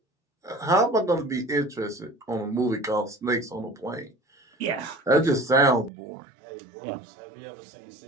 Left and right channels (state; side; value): drops out; left; at 5.9 s